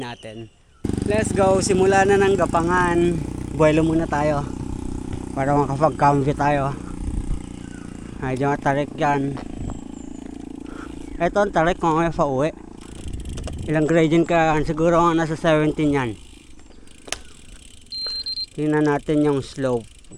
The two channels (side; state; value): both; identical; correlation 1.00